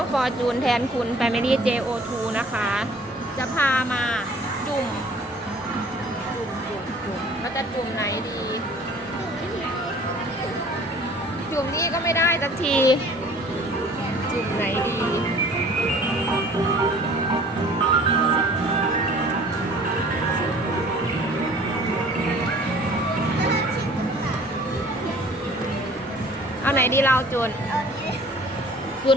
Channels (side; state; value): both; normal; correlation 0.51